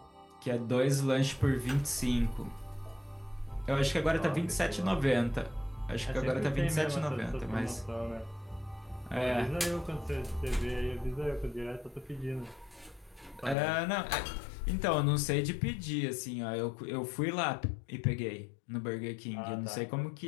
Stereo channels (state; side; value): drops out; right; at 13.6 s